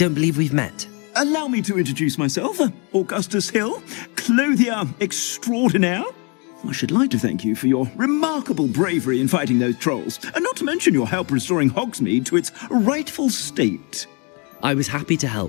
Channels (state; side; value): quieter; right; 33.2 dB